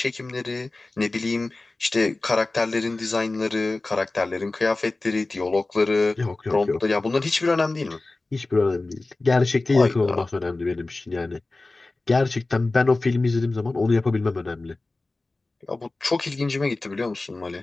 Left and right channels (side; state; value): right; quieter; 3.2 dB